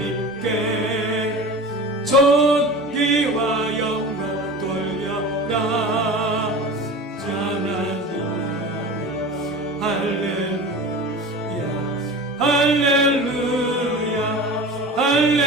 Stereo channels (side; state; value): both; normal; correlation 0.34